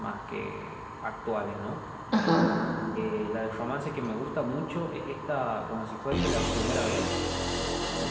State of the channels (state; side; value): identical; both; correlation 1.00